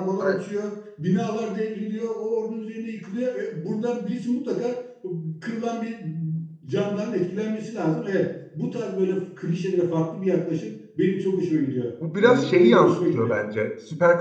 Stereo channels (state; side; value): identical; both; correlation 1.00